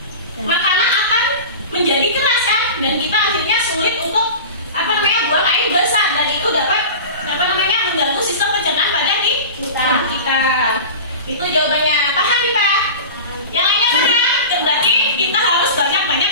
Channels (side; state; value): both; inverted; correlation -0.31